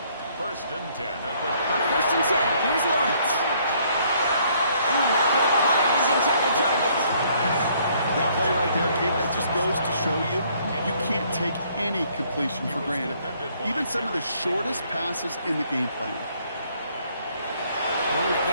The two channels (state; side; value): inverted; both; correlation -0.64